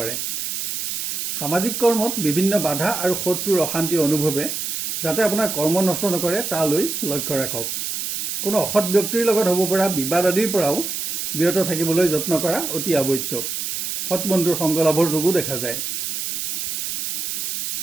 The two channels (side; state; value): right; noise; hiss, 3 dB below the sound